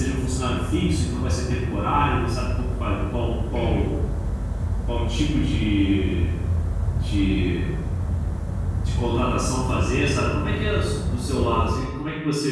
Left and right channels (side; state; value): both; identical; correlation 1.00